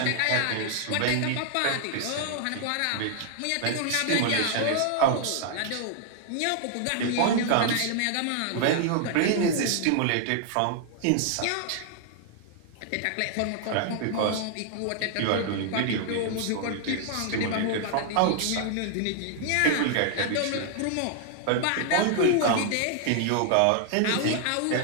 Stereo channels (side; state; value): both; different; correlation 0.00